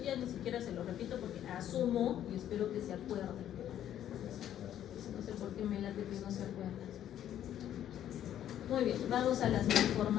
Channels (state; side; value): quieter; right; 11.0 dB